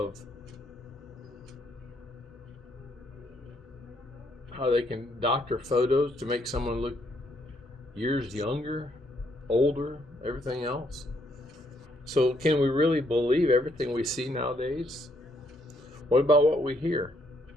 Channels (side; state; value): both; normal; correlation 0.71